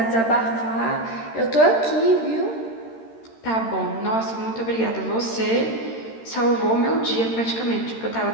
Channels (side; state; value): right; late; 13 ms